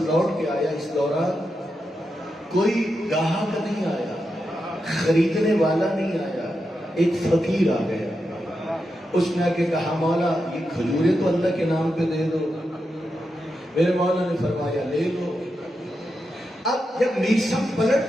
لوٹ کے آیا، اس دوران کوئی گاہک نہیں آیا، خریدنے والا نہیں آیا. ایک فقیر آ گیا. اس نے آ کے کہا مولا یہ کھجوریں تو اللہ کے نام پہ دے دو. میرے مولا نے فرمایا لے لو. اب جب میسم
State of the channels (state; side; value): normal; both; correlation 0.87